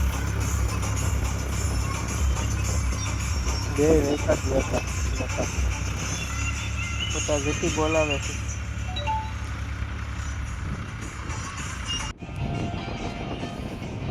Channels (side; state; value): both; identical; correlation 1.00